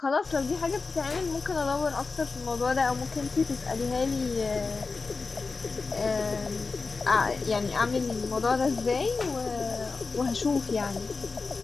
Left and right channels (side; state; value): right; quieter; 4.2 dB